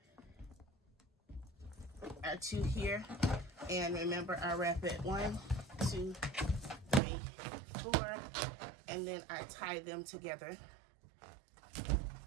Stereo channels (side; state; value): left; drops out; at 7.0 s